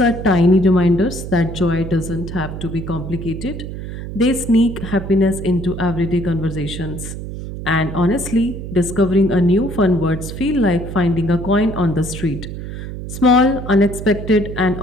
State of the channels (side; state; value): right; noise; hum, 8 dB below the sound